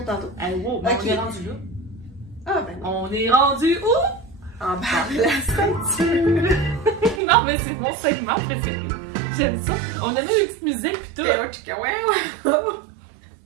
tantôt. Ah, wow, ben on est rendu là. Ah, ben non. On est rendu où? En bas de la ceinture. Non, mais c'est mon segment préféré. J'aime ça. On a mis une petite musique pis tout.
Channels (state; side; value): drops out; left; at 7.2 s